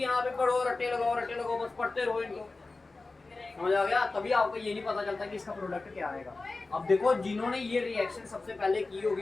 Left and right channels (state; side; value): quieter; right; 3.5 dB